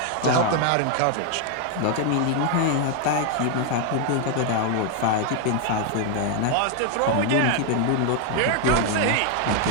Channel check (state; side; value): different; both; correlation 0.00